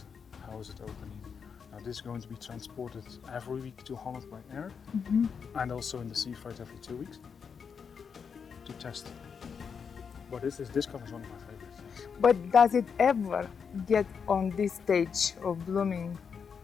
how is it opening. Now this is going to be transported every week to Holland by air, and also in the sea freight every 2 weeks to test. But this color is one of my favorites. But does it ever get on this stage of blooming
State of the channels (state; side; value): quieter; right; 6.4 dB